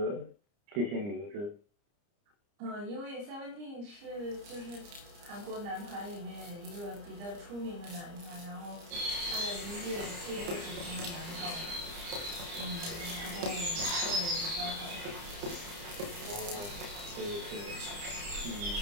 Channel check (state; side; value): late; left; 30 ms